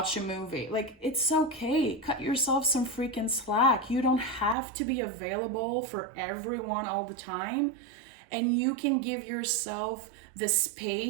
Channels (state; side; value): drops out; left; at 4.5 s